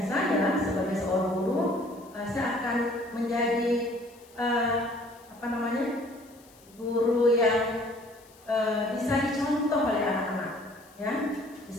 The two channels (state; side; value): noise; left; hiss, 27 dB below the sound